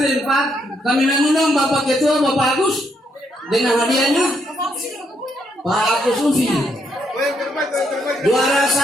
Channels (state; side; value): normal; both; correlation 0.75